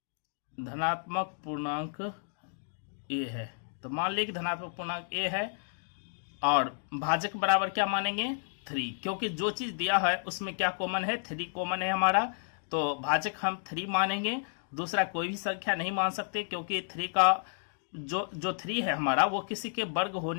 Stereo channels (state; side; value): silent; right; digital silence